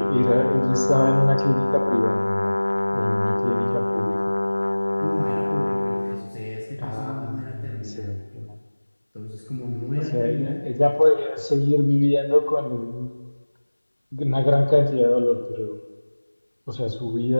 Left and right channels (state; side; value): inverted; both; correlation -1.00